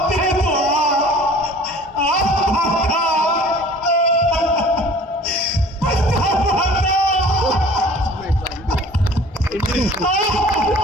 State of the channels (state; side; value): normal; both; correlation 0.48